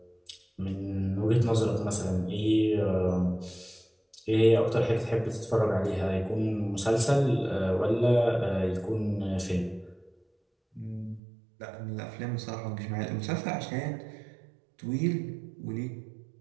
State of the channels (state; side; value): drops out; left; at 11.2 s